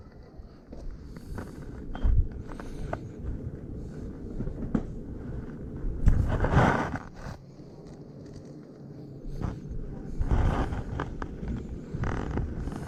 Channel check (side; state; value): both; identical; correlation 1.00